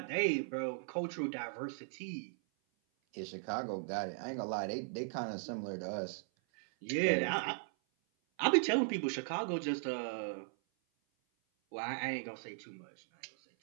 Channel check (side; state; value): left; silent; 53 dB below the other